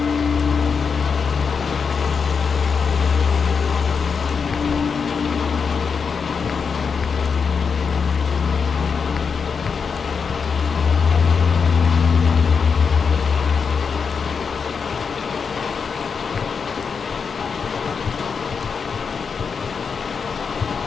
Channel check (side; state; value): right; quieter; 5.8 dB